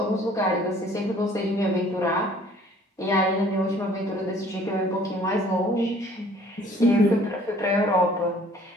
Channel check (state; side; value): normal; both; correlation 0.55